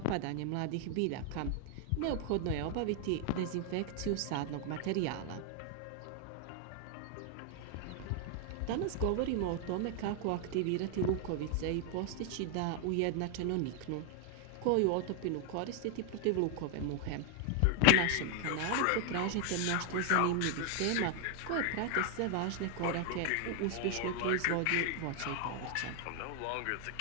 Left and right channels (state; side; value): different; both; correlation 0.00